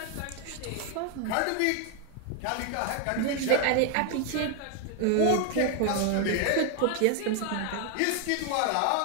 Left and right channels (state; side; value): different; both; correlation 0.01